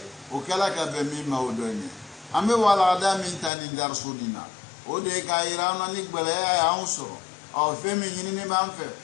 o kala ka be mi mawdoni ambe wala da min tani darsunina o de ka irana ni gbele ya unso o femi yini ni manfe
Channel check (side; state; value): right; drops out; at 3.5 s